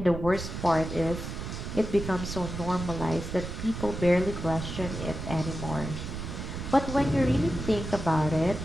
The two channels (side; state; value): right; noise; rumble, 6 dB below the sound